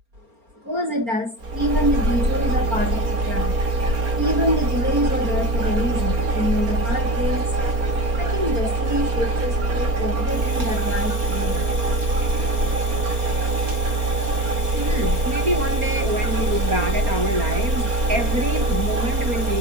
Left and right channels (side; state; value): left; late; 4.3 ms